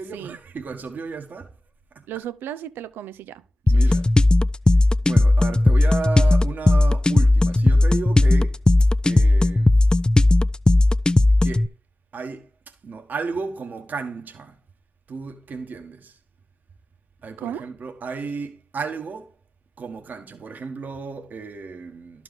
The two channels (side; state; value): both; normal; correlation 0.97